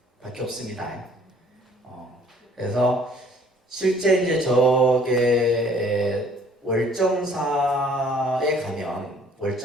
밖에 없습니다. 그래서 실제 이제 저게 월정사에 가면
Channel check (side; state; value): both; normal; correlation 0.57